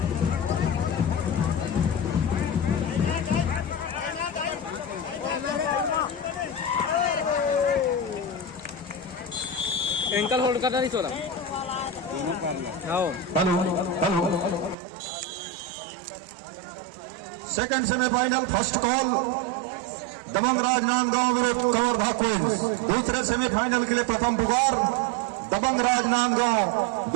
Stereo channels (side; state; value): left; drops out; at 14.8 s